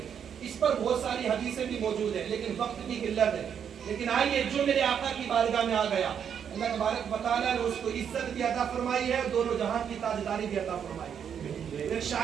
اس پر بہت ساری حدیثیں بھی موجود ہیں لیکن وقت کی قلت ہے۔ لیکن آئیے جو میرے آقا کی بارگاہ میں آ گیا اللہ تبارک و تعالیٰ نے اس کو عزت بھی عطا فرمائی ہے اور دونوں جہاں کی تاجداری بھی عطا فرمائی ہے۔ ایک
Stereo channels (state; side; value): quieter; left; 8.1 dB